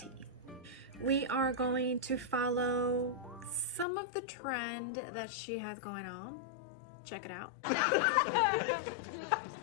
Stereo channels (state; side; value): drops out; right; at 3.9 s